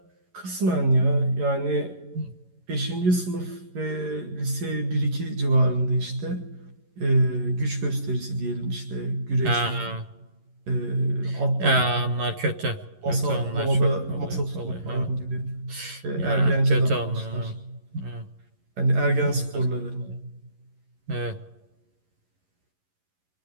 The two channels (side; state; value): left; late; 11 ms